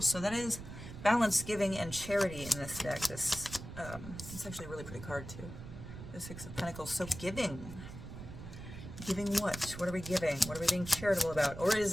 So that is balance, giving, and charity in this deck. It's actually a really pretty card too. The Six of Pentacles. So giving. Giving what? What are we giving? What are we being charitable about? Or is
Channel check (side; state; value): right; noise; rumble, 11 dB below the sound